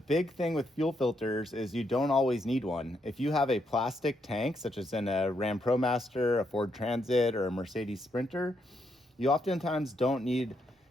big thing with fuel filters is you don't always need one. If you have a plastic tank, such as in a Ram ProMaster, a Ford Transit, or a Mercedes Sprinter, you oftentimes don't need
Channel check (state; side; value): normal; both; correlation 0.78